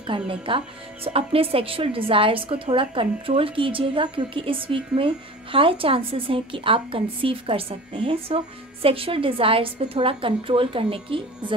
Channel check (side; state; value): both; normal; correlation 0.38